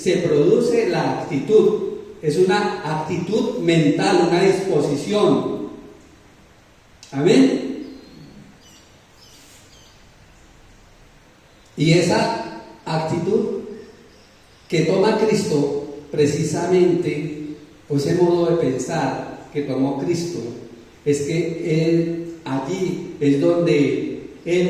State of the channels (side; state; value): both; identical; correlation 1.00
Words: produce la actitud. Es una actitud mental, una disposición. Amén. Y esa actitud que toma Cristo, precisamente, o ese modo de pensar que tomó Cristo, es que Él allí es donde